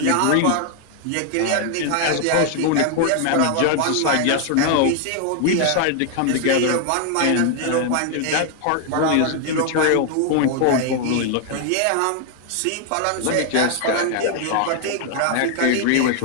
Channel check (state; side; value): different; both; correlation 0.00